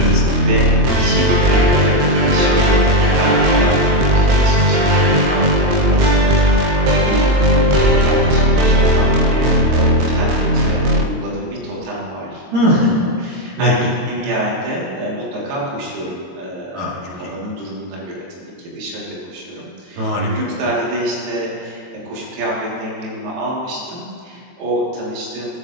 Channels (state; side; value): late; left; 22 ms